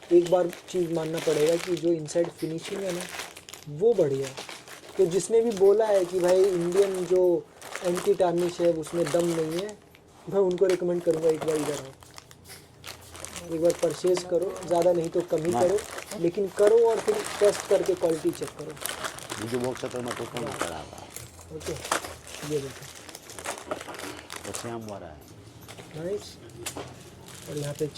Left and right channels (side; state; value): both; identical; correlation 1.00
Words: एक बार चीज़ मानना पड़ेगा कि जो इनसाइड फिनिशिंग है ना वो बढ़िया है। तो जिसने भी बोला है कि भाई इंडियन जो एंटी टार्निश है उसमें दम नहीं है, मैं उनको रिकमेंड करूँगा एक बार इधर आओ, एक बार परचेज़ करो, ज़्यादा नहीं तो कम ही करो, लेकिन करो और फिर टेस्ट करके क्वालिटी चेक करो। ओके, ये देखो नाइस। और यहाँ पे